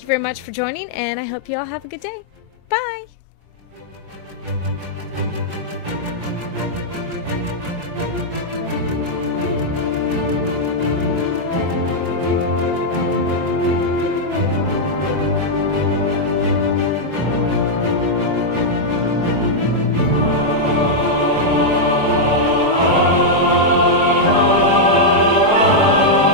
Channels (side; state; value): left; late; 4.8 ms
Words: you very much for joining, and I hope you all have a good day.